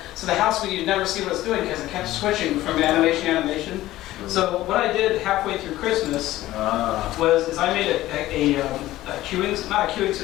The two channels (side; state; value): right; quieter; 15.7 dB